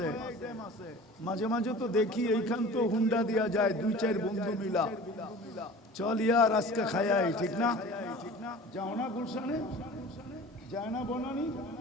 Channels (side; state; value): both; normal; correlation 0.41